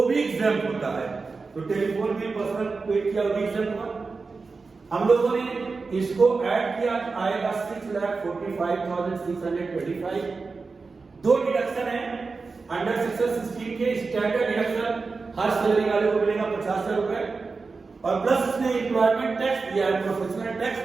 भी एग्जाम्प होता है। तो टेलीफोन बिल पर्सनल पेड किया भी एग्जाम्प हुआ। हम लोगों ने इसको ऐड किया, आएगा 6,45,625। 2 डिडक्शन है अंडर सेक्शन 16 के। स्टैंडर्ड डिडक्शन हर सैलरी वाले को मिलेगा 50 रुपए, और प्लस इसने एम्प्लॉयमेंट टैक्स दिया है, प्रोफेशनल टैक्स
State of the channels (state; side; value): quieter; left; 4.3 dB